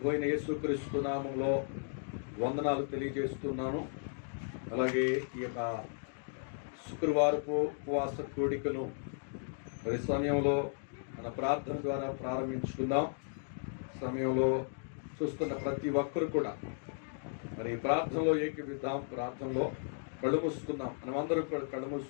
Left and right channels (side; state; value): right; silent; digital silence